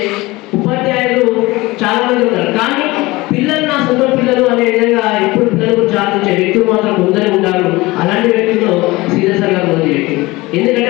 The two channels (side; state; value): right; quieter; 21.0 dB